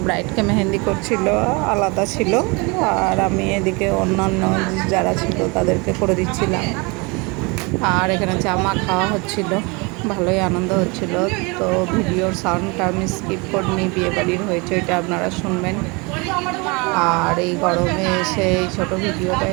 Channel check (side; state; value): left; quieter; 28.3 dB